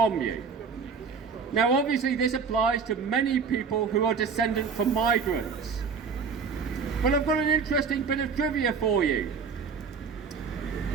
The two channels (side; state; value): left; quieter; 5.7 dB